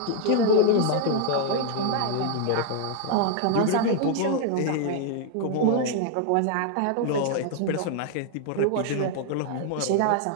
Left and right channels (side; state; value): both; different; correlation 0.00